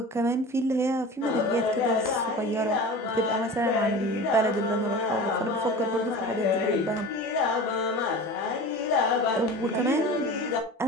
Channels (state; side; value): normal; both; correlation 0.35